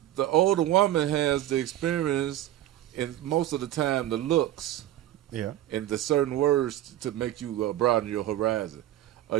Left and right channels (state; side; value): quieter; left; 13.4 dB